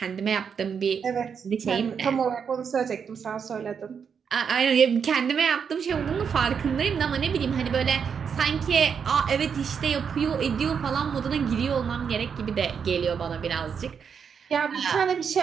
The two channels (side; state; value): left; quieter; 6.8 dB